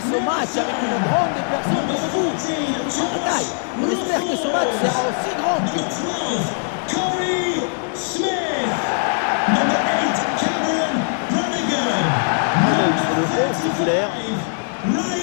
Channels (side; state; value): right; silent; digital silence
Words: match avec une grande personne comme vous. Par la taille, on espère que ce match sera aussi grand que vous. Corey Smith, number 8, Cameron Brannigan. Un œil sur le 11 titulaire.